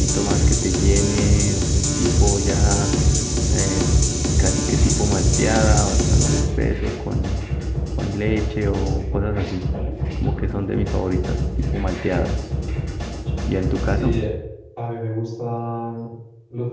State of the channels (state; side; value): identical; both; correlation 1.00